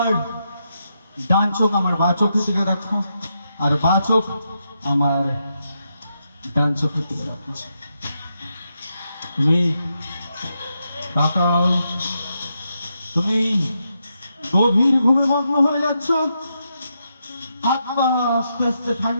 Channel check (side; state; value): both; inverted; correlation -0.83